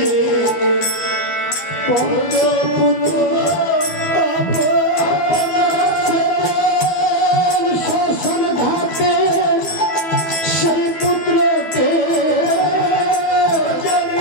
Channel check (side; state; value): right; late; 12 ms